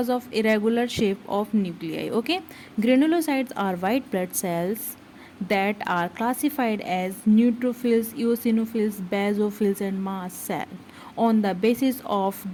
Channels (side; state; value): both; identical; correlation 1.00